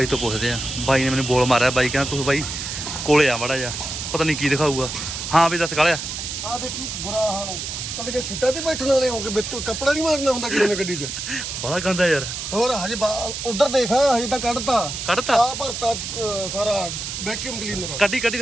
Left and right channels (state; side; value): noise; right; hiss, 6 dB below the sound